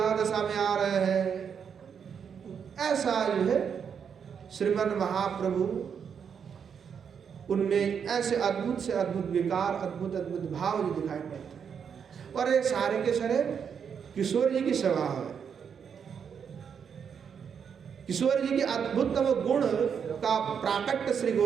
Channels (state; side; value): quieter; left; 7.2 dB